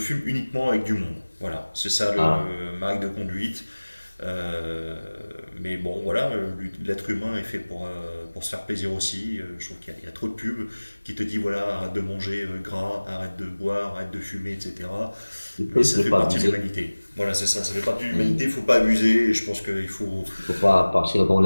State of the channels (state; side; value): inverted; both; correlation -1.00